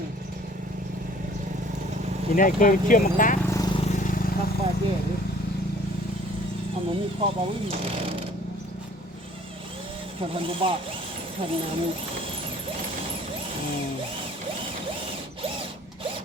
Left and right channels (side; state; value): both; normal; correlation 0.53